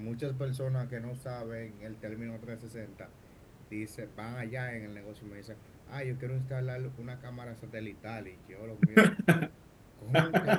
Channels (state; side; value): identical; both; correlation 1.00